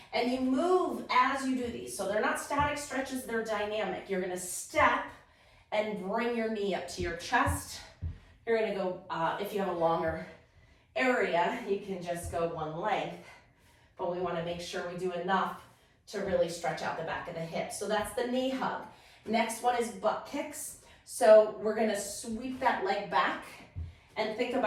and you move as you do these. So they're not static stretches, they're dynamic. You're gonna step and bring your knee up to your chest. You're gonna go, if you have a longer area, you can just go one length, but we wanna make sure we do enough to really stretch out the back of the hip. So that's the knee hug. Next one is butt kicks. So we're gonna sweep that leg back and think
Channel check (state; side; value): identical; both; correlation 1.00